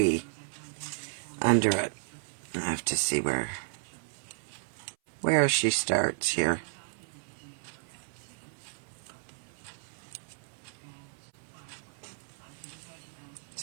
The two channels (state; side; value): silent; left; 56 dB below the other